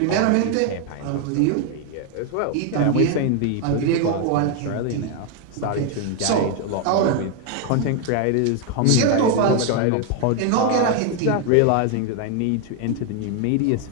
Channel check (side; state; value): both; different; correlation 0.01